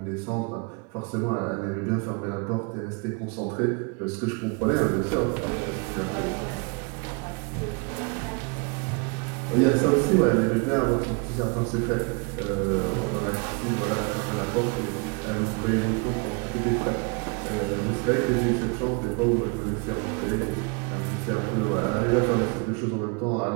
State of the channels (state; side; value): quieter; left; 32.6 dB